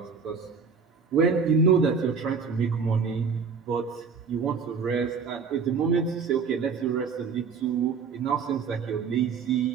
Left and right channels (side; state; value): left; quieter; 5.6 dB